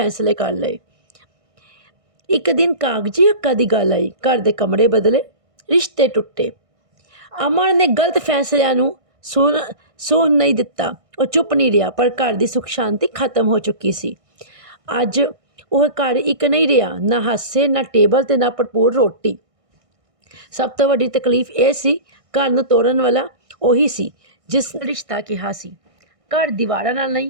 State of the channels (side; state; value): left; late; 1.6 ms